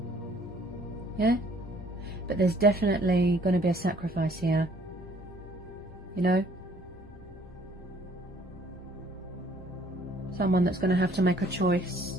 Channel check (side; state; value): both; normal; correlation 0.60